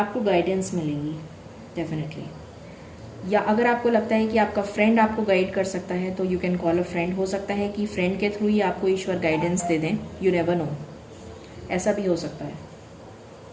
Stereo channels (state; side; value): identical; both; correlation 1.00